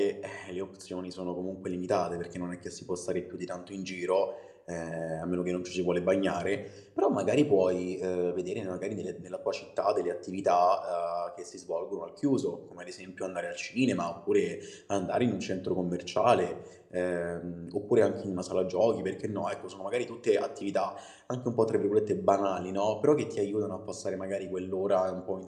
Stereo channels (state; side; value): identical; both; correlation 1.00